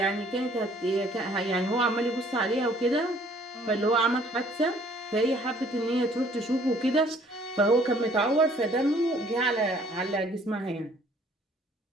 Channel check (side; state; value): both; normal; correlation 0.59